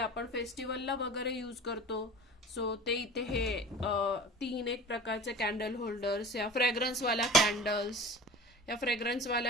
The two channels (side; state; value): both; normal; correlation 0.39